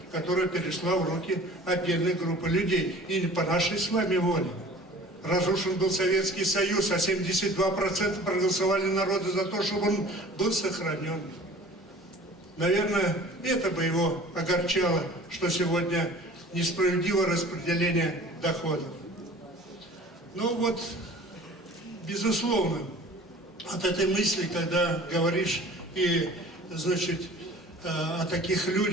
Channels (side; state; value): both; normal; correlation 0.45